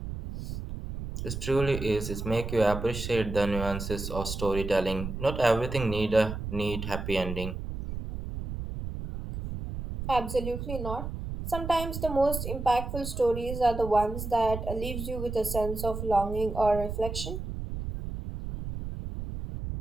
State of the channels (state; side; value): noise; right; rumble, 6 dB below the sound